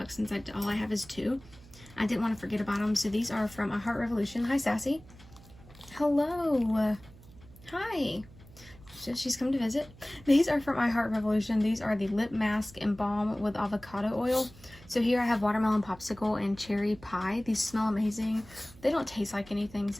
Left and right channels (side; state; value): right; noise; hum, 22 dB below the sound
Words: since all I have is 2. I didn't want to forget about them. So these are from I Heart Revolution. Hi, Sassy. Hello. Hi. So she's come to visit. These are from I Heart Revolution. These are the lip mask and balm with avocado oil. So here I have watermelon popsicle and cherry pie. These smell amazing. They don't taste like anything,